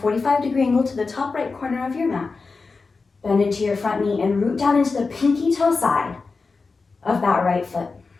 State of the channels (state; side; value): quieter; right; 4.3 dB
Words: angle to the top right corner of your mat. Bend into your front knee and root down into the pinky toe side of that right foot.